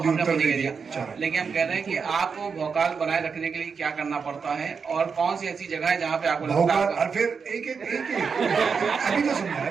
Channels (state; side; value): quieter; left; 5.7 dB